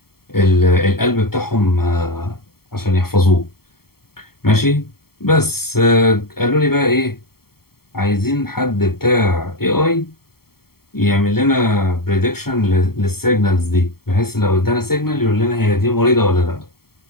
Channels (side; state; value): right; late; 0.94 ms